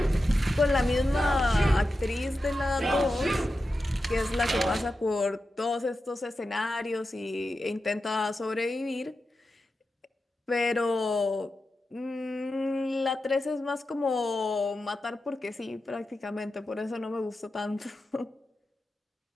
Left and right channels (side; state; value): both; normal; correlation 0.91